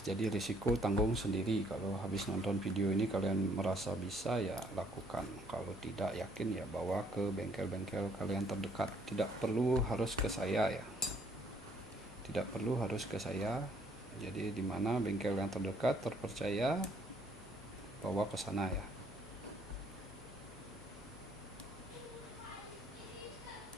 Jadi risiko tanggung sendiri. Kalau habis nonton video ini kalian merasa bisa ya lakukan, kalau tidak yakin ya bawa ke bengkel-bengkel kalian terdekat. Tidak perlu harus ke saya ya, tidak perlu harus ke saya. Jadi dimana bengkel yang terdekat terpercaya, bawa ke sana ya.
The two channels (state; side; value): normal; both; correlation 0.64